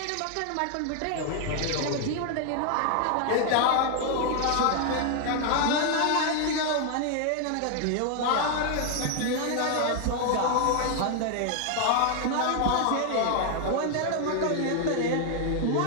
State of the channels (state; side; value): different; both; correlation 0.00